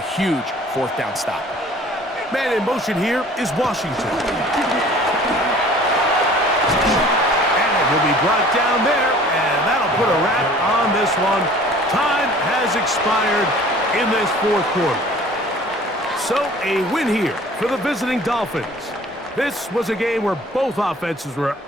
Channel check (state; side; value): normal; both; correlation 0.49